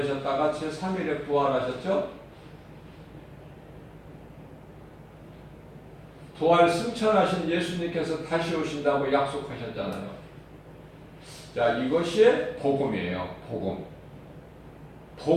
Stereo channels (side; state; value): both; identical; correlation 1.00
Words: 제3일에 부활하셨죠? 부활 승천하신 예수님께서 다시 오신다고 약속하셨잖아요. 자, 이것이 복음이에요. 복음.